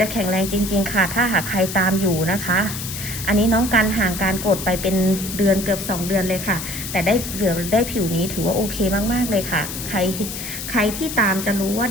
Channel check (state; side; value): noise; left; hiss, 7 dB below the sound